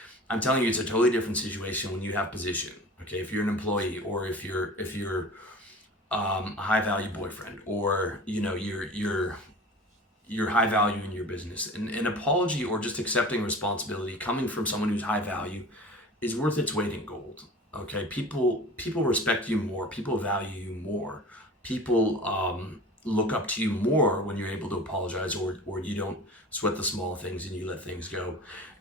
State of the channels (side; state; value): both; normal; correlation 0.38